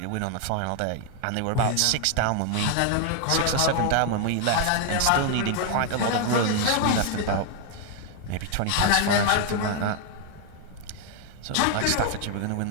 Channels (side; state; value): both; different; correlation 0.00